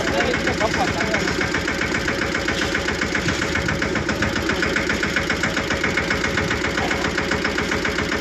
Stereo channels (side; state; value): both; identical; correlation 1.00